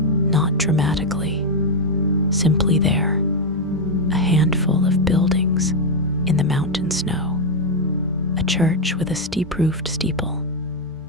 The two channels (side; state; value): both; normal; correlation 0.02